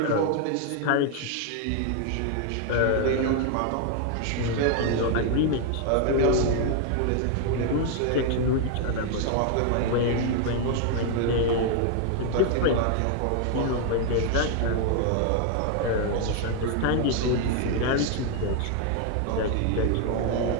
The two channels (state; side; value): different; both; correlation 0.00